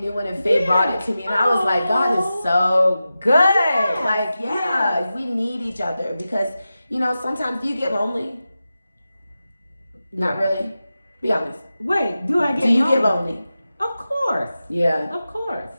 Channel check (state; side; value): inverted; both; correlation -0.93